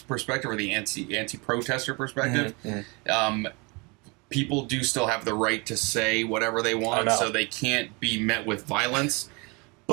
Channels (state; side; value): quieter; left; 28.7 dB